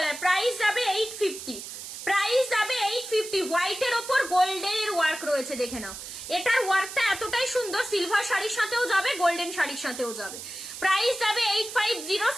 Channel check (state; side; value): noise; right; hiss, 10 dB below the sound